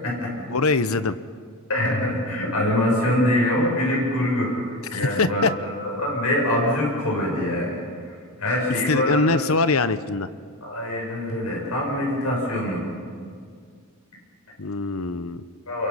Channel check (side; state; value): both; normal; correlation 0.20